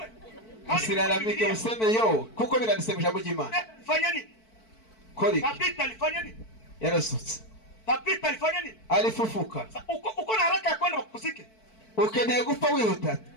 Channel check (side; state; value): right; late; 4.5 ms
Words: usiraramike useme yo kuko biranditse mu ijambo ry'Imana. Fanya nini? Kori Tabita alifanya nini? yarasutse. Tabita alifanya nini? Alifufuka. Uko na haraka ya kwenda kusike, ukeneye gupfa wihuta.